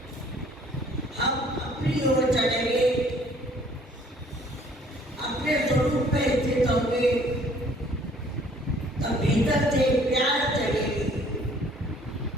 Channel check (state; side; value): normal; both; correlation 0.58